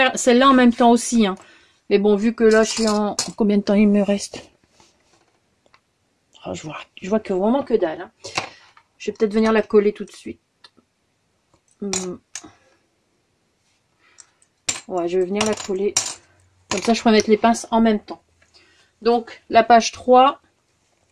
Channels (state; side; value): identical; both; correlation 1.00